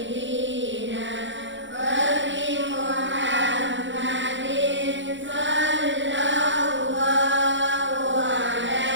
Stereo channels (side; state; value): left; late; 0.54 ms